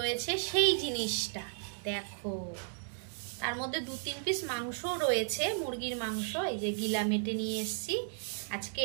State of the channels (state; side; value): silent; left; digital silence